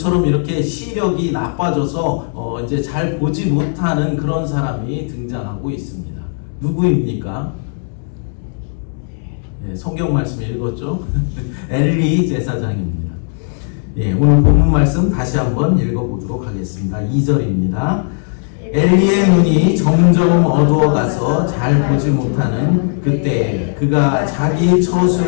이렇게 시력이 나빠져서 이제 잘 보지 못하는 그런 사람이 등장하고 있습니다. 누구입니까? 성경 말씀 읽었죠? 엘리 제사장입니다. 오늘 본문 말씀 다시 한번 읽어보도록 하겠습니다. 2절입니다. 엘리의 눈이 점점 어두워가서 잘 보지 못하는 그때 그가 자기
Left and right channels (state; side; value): silent; right; 60 dB below the other